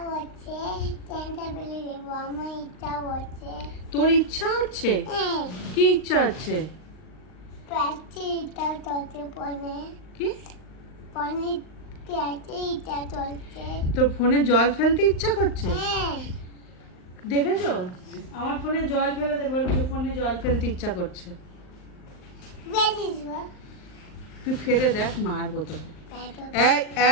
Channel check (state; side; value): late; right; 39 ms